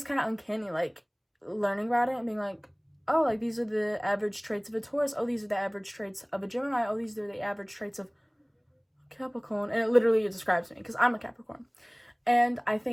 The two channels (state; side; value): identical; both; correlation 1.00